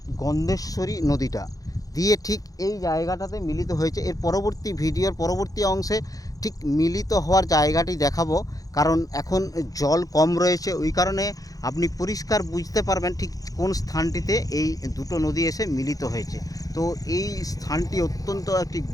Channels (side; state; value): right; late; 0.17 ms